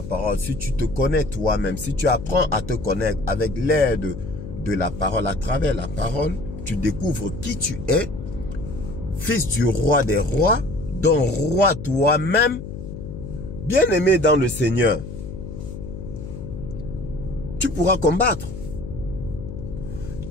parole, si tu te connais toi-même, si tu apprends à te connaître avec l'aide de la parole, à travers la parole, tu découvres qui tu es, fils du roi des rois, dont roi toi-même, bien-aimé dans le Seigneur, tu pourras combattre.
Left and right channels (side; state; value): left; noise; hum, 10 dB below the sound